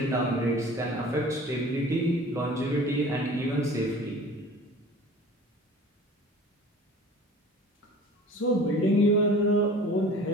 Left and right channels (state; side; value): normal; both; correlation 0.43